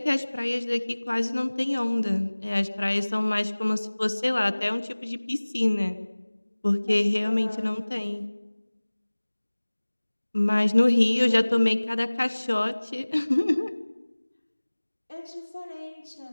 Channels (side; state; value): both; inverted; correlation -1.00